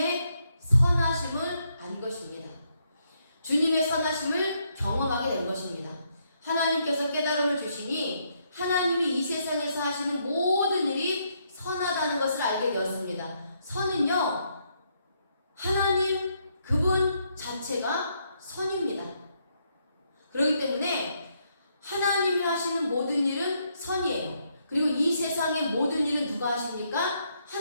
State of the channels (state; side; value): inverted; both; correlation -0.76